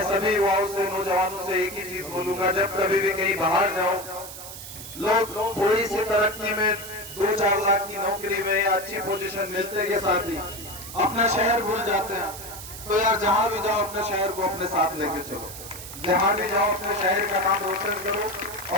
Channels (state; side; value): noise; right; hiss, 12 dB below the sound